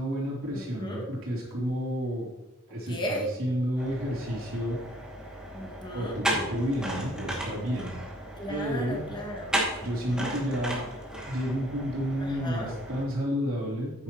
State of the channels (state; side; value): normal; both; correlation 0.62